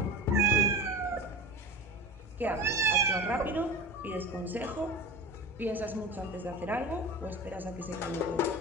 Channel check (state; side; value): normal; both; correlation 0.30